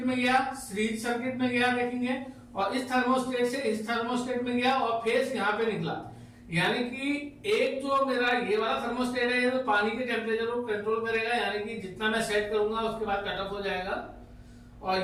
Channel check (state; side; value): identical; both; correlation 1.00